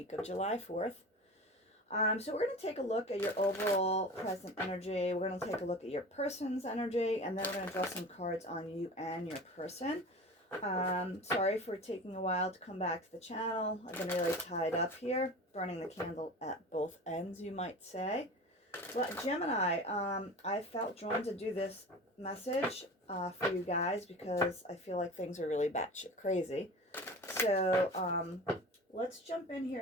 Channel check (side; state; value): both; normal; correlation 0.35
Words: of July 4th. So we're going to take a look at your overall present energy. We're going to take a look at your person's energy, and then we're going to draw some cards on you and your person. Sorry for taking a while to come back to the channel. I've been really tied up here, burning the candle at both ends, you might say. But Gemini, I felt drawn to do this message for you guys because I feel like things are really batshit crazy. So let's jump in